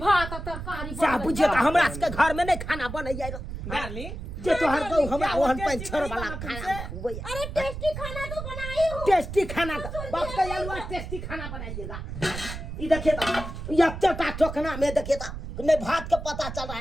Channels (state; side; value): noise; right; rumble, 8 dB below the sound